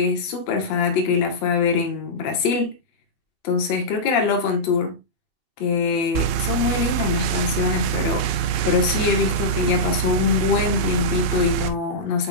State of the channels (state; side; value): late; right; 2.7 ms